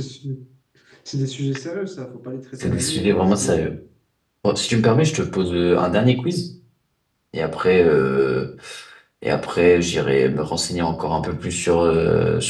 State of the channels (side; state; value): both; identical; correlation 1.00